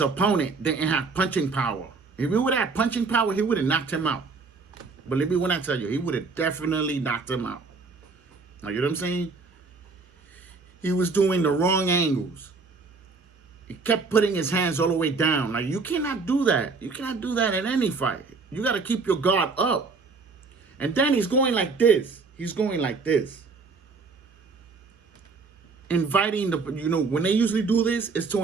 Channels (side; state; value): left; quieter; 4.3 dB